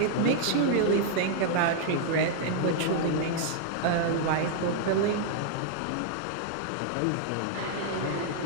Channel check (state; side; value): different; both; correlation 0.00